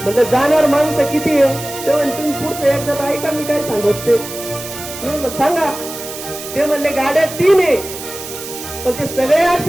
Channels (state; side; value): noise; right; hiss, 11 dB below the sound